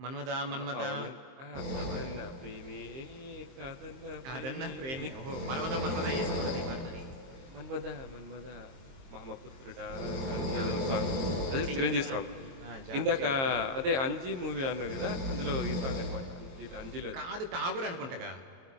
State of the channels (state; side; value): late; left; 23 ms